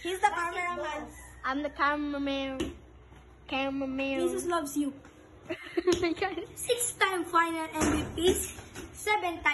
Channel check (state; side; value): identical; both; correlation 1.00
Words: He's the cameraman. I'm the cameraman. Jesus loves you. 6-time final MVPs,